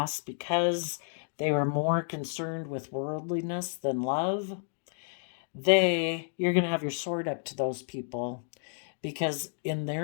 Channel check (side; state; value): right; silent; digital silence